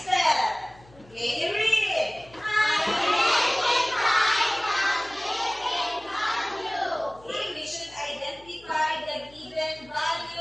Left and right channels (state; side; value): noise; left; hum, 25 dB below the sound